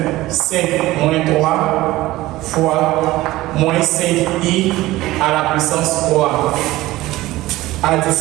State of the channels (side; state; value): left; quieter; 17.6 dB